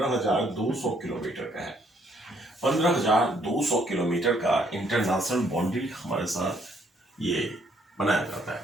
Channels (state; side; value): normal; both; correlation 0.68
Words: किलोमीटर का है। 15,200 किलोमीटर का इंटरनेशनल बाउंड्री हमारे साथ ये बनाया जाता